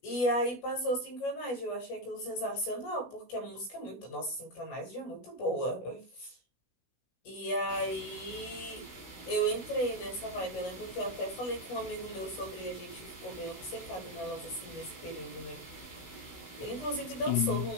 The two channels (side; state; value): right; late; 16 ms